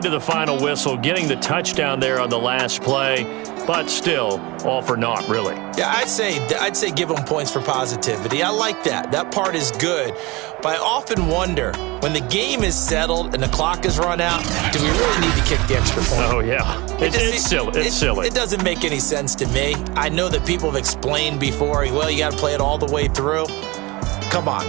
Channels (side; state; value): left; quieter; 23.3 dB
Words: to the final whistle, getting the touchdown there on the last play, but still, all for naught, really. Yeah, I'd say give them points for positivity. I like that. That part is good. But I often wonder, when the game is settled and the clock is run out, do we really need to kick the extra point? Oh, yeah. It's silly. It doesn't make any sense to me. I know that people have explained before, well, you got to play it all the way through. Come on,